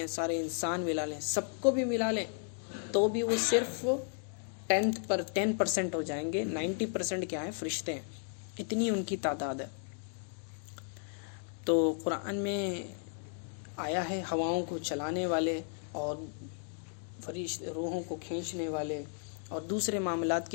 سارے انسان ملا لیں، سب کو بھی ملا لیں تو بھی وہ صرف 10% ہو جائیں گے. 90% کیا ہے؟ فرشتے ہیں. اتنی ان کی تعداد ہے. تو قرآن میں آیا ہے ہواؤں کو چلانے والے اور روحوں کو کھینچنے والے اور دوسرے معاملات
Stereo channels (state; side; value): silent; right; 55 dB below the other